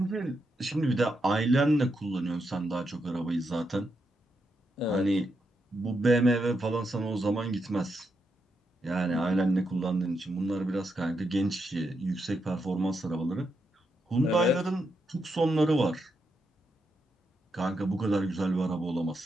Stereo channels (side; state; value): both; normal; correlation 0.83